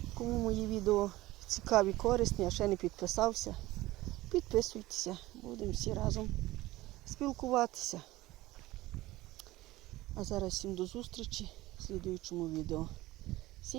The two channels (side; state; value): left; quieter; 17.9 dB